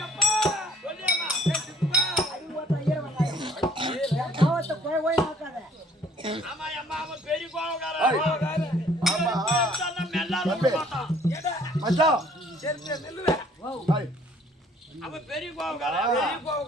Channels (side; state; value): both; normal; correlation 0.58